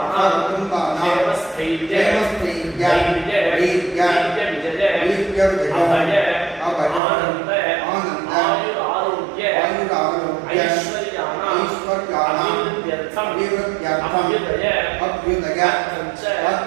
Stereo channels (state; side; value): drops out; left; at 7.0 s